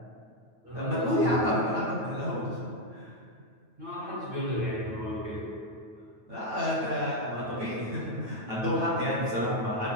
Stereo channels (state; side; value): late; left; 9.2 ms